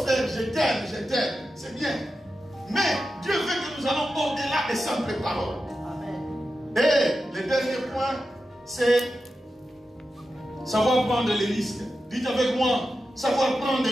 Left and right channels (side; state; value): both; normal; correlation 0.91